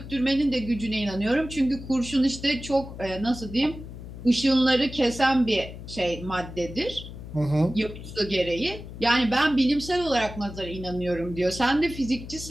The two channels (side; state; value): left; noise; hum, 12 dB below the sound